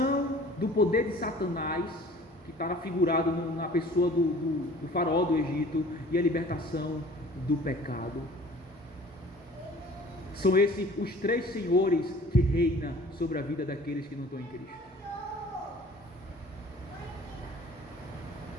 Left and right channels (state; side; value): normal; both; correlation 0.48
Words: do poder de Satanás, que está figurado na pessoa do faraó do Egito, e a libertação do pecado. São esses os 3 senhores que reinam sobre a vida daqueles que não estão em Cristo.